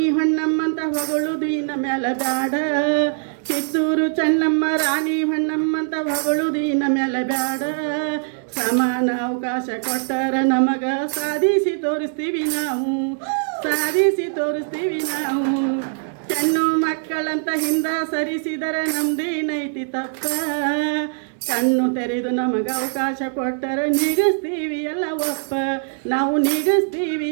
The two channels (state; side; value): silent; left; digital silence